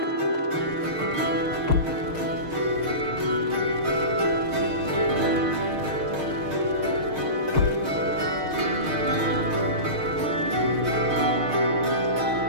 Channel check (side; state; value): left; late; 6.5 ms